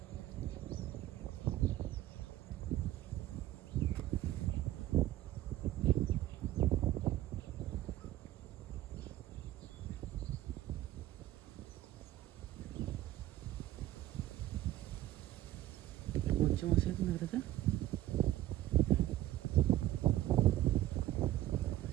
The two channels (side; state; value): left; quieter; 14.6 dB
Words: कोणचे मासे आहेत मेघराच्या?